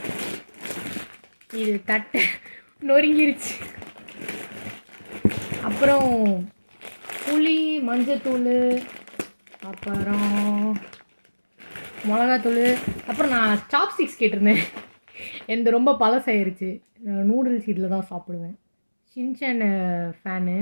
இது தட்டை நொறுங்கிருச்சு. அப்புறம் புளி, மஞ்சத்தூள், அப்புறம் மிளகாத்தூள். அப்புறம் நான் சாப்ஸ்டிக்ஸ் கேட்டிருந்தேன், எந்த ரொம்ப பழசாயிருச்சு. நூடுல்ஸ் இதில் தான் சாப்பிடுவேன். Shinchan fan.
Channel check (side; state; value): both; inverted; correlation -1.00